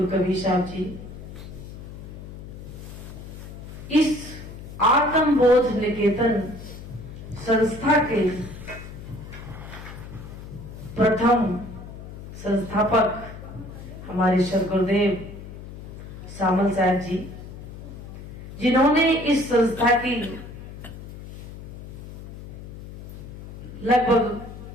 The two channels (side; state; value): left; noise; hum, 13 dB below the sound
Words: कबीर साहब जी इस आत्मबोध निकेतन संस्था के प्रथम संस्थापक हमारे सद्गुरुदेव सामल साहब जी, जिन्होंने इस संस्था की लगभग